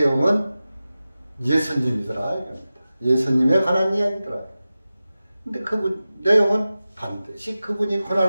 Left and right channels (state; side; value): inverted; both; correlation -0.95